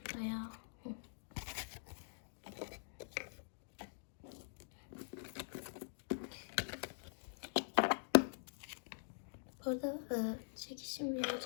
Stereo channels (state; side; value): silent; right; digital silence